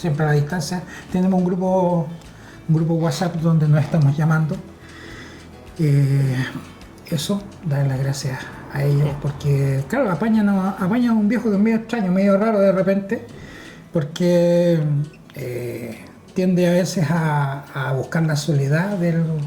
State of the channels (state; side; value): identical; both; correlation 1.00